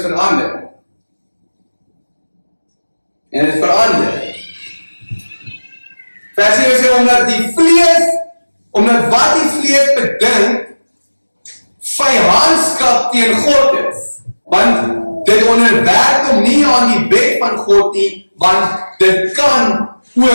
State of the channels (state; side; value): inverted; both; correlation -1.00